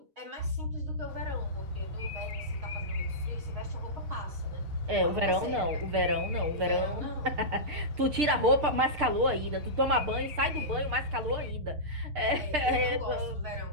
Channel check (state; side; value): late; left; 6.6 ms